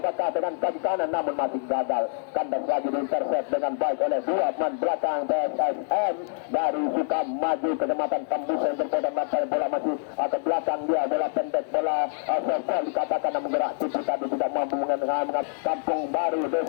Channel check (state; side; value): silent; right; digital silence